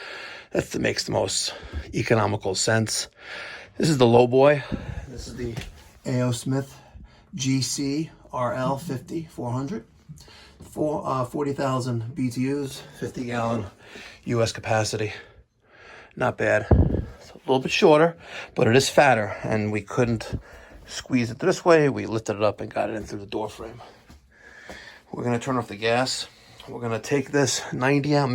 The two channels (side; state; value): both; identical; correlation 1.00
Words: That makes the most economical sense. This is the low boy. This is the A.O. Smith GC RL 50-400. 40,000 BTUs, 50-gallon U.S. capacity. Not bad. It's a little bit shorter, but it is fatter, and we couldn't squeeze it this way. We lifted it up and got it in through the door frame. We're going to turn off the gas. We're going to take this 90 out,